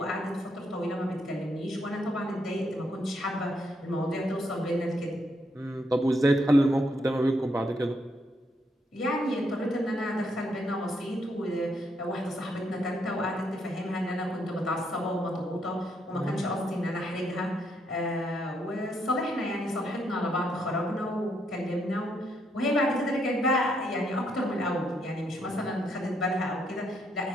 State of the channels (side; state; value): both; normal; correlation 0.75